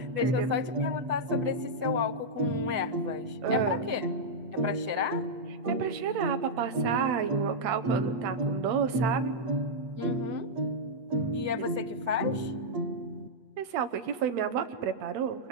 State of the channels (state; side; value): late; left; 8.3 ms